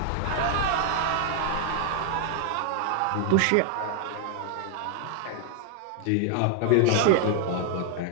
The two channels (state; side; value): different; both; correlation 0.00